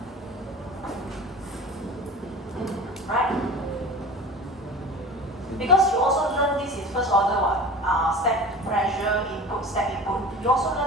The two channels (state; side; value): normal; both; correlation 0.36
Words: Right? Because you also learn this in first order step pressure input, step input. You also